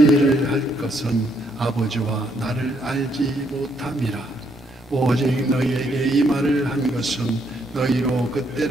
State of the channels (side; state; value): both; normal; correlation 0.73